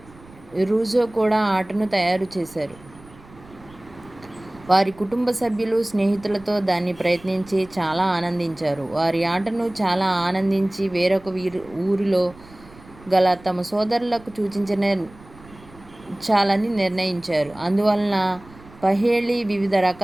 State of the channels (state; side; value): noise; right; rumble, 23 dB below the sound